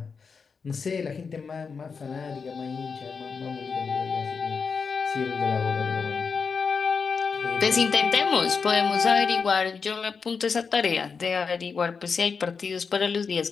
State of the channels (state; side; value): quieter; right; 5.4 dB